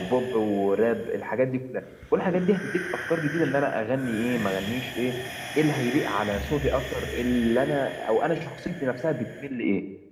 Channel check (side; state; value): both; identical; correlation 1.00